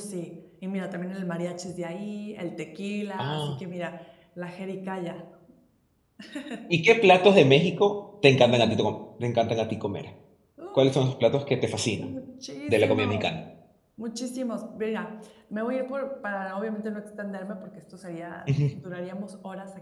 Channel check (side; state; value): both; identical; correlation 1.00